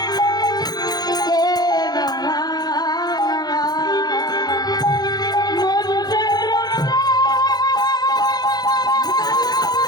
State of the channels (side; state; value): right; late; 0.19 ms